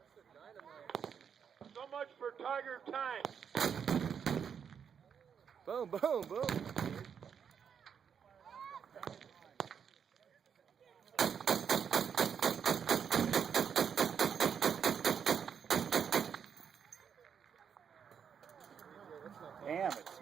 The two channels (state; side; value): quieter; left; 7.4 dB